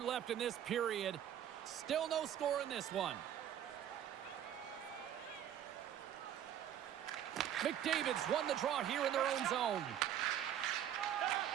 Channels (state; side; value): quieter; left; 10.4 dB